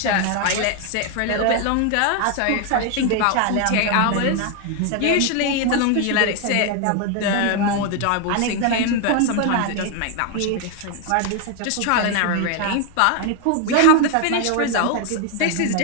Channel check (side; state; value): both; different; correlation 0.01